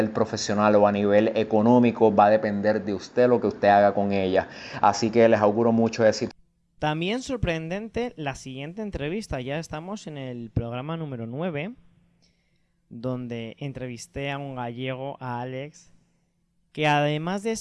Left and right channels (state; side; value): identical; both; correlation 1.00